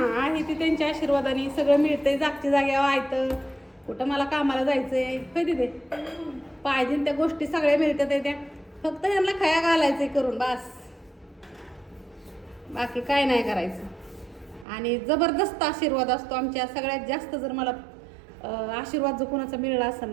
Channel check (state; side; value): drops out; left; at 14.7 s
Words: आहे ते त्यांच्या आशीर्वादाने सगळं मिळतंय, जागच्या जाग्यावर आहे. कुठं मला कामाला जायचंय कधी ते पाहिजे त्या गोष्टी सगळ्या मिळतात त्या, फक्त ह्यांना खया घालायचंय करून बस, बाकी काय नाही करायचं. आणि जबरदस्त आशीर्वाद असतो आमच्या. सगळ्यात जास्त जर मला आशीर्वाद जो कोणाचा मिळाला असेल